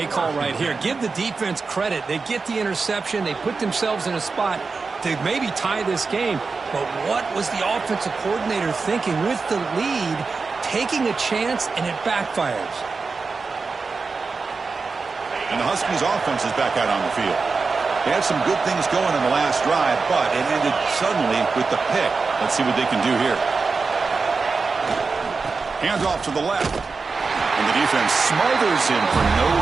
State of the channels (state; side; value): quieter; left; 4.5 dB